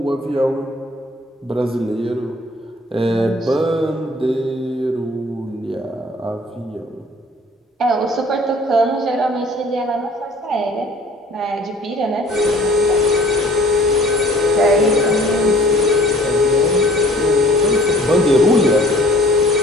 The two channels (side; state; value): both; normal; correlation 0.52